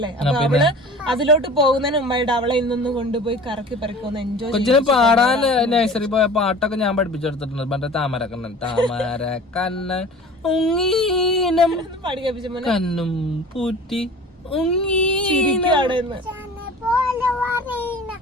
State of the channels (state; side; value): normal; both; correlation 0.41